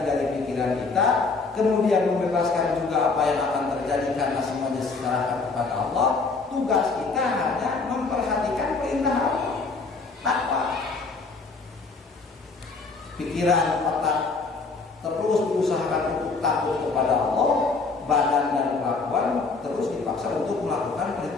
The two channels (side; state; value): right; quieter; 4.1 dB